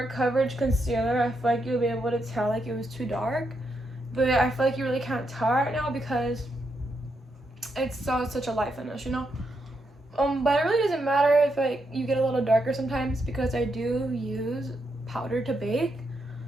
coverage concealer, I feel like you'll be able to tell like it was too dark. But I feel like you really can't tell right now because it's such a light finish, you know? But it really doesn't matter if like you get a little darker sometimes, because I do use powder to bake.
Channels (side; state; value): both; normal; correlation 0.81